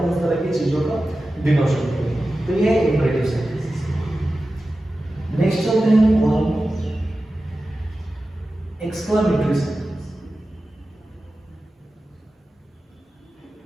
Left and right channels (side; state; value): both; normal; correlation 0.94